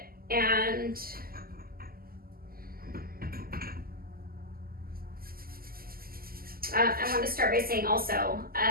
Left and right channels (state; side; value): late; left; 0.42 ms